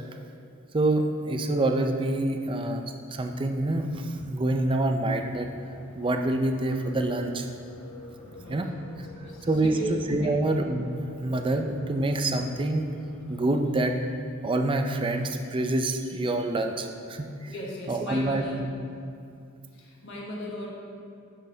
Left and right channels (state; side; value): normal; both; correlation 0.65